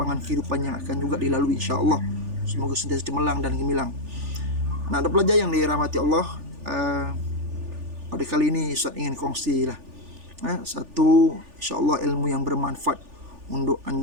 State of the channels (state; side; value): late; left; 3.4 ms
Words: kehidupan yang akan juga dilalui insya-Allah. Semoga sentiasa cemerlang dan gemilang. Anak-anak pelajar yang dirahmati Allah, pada kali ini Ustaz ingin kongsi satu insya-Allah ilmu yang bermanfaat untuk